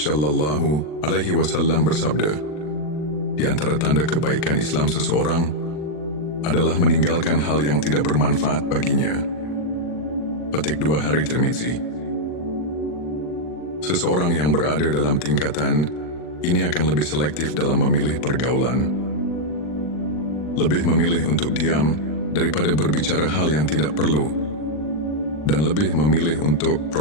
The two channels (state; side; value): late; right; 40 ms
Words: Alaihi Wasallam bersabda, "Di antara tanda kebaikan Islam seseorang adalah meninggalkan hal yang tidak bermanfaat baginya." Petik 2 hari Tirmizi. Seseorang yang berada dalam tingkatan ini akan lebih selektif dalam memilih pergaulan, lebih memilih untuk diam daripada berbicara hal yang tidak perlu, dan lebih memilih untuk